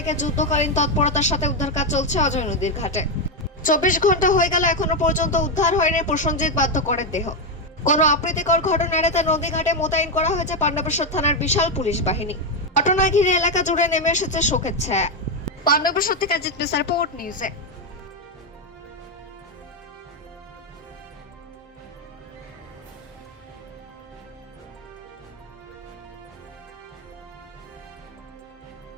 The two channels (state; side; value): normal; both; correlation 0.06